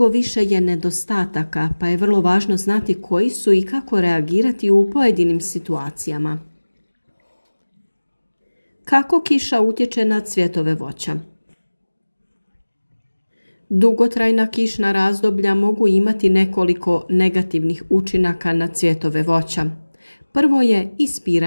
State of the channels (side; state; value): both; inverted; correlation -1.00